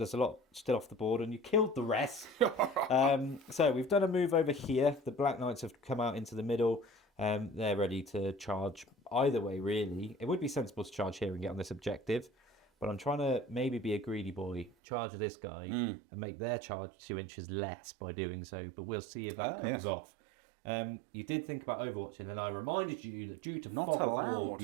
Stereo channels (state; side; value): drops out; left; at 14.7 s